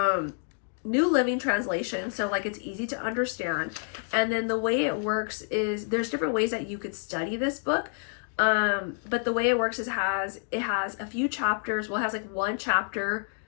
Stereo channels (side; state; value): right; silent; 59 dB below the other